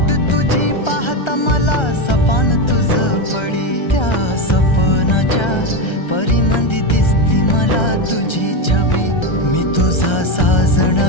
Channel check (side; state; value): right; late; 1.3 ms